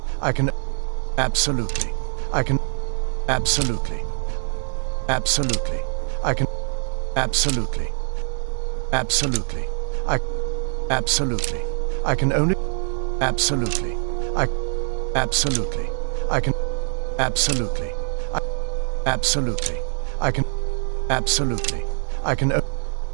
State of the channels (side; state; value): left; silent; digital silence